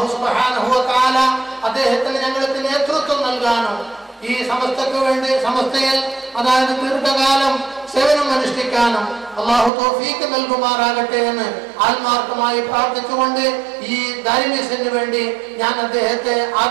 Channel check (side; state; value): left; drops out; at 9.7 s